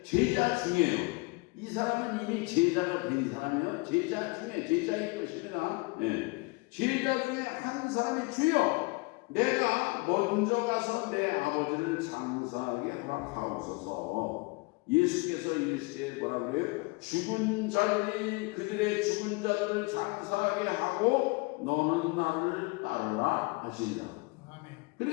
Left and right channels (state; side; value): quieter; right; 27.0 dB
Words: 제자 중에요. 이 사람은 이미 제자가 된 사람이에요. 제자일 것입니다. 제자 중에 한 사람이 주여, 내가 먼저 가서 내 아버지를 장사하게 허락하옵소서. 예수께서 이르시되 뭐라고 해요? 그들의 죽은 자들을 장사하게 하고 너는 나를 따르라 하시니라.